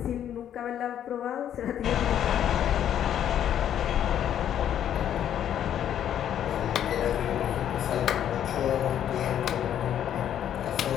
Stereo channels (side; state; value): right; quieter; 10.2 dB